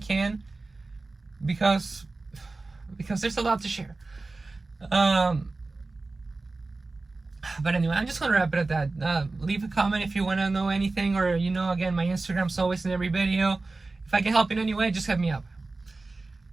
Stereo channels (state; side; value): quieter; left; 3.5 dB